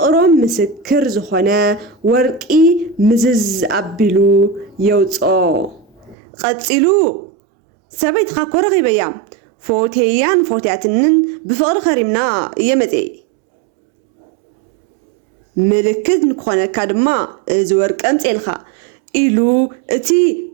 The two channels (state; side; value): drops out; left; at 6.2 s